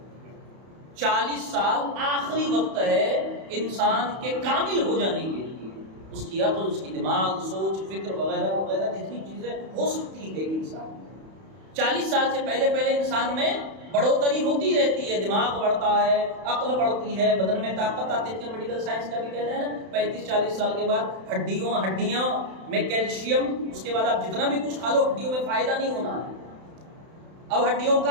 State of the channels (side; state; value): left; late; 31 ms